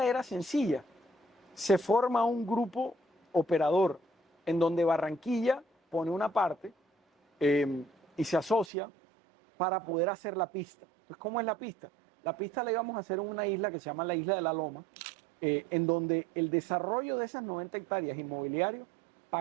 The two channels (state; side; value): drops out; left; at 8.7 s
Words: era sencilla. Se forma un grupo operador en donde Barranquilla pone una parte y se asocia para poder hacer la pista. Entonces, ¿cómo es la pista? La pista la íbamos a hacer en una isla que se llama la Isla de la Loma, en donde el desarrollo de esas 90 hectáreas inmobiliario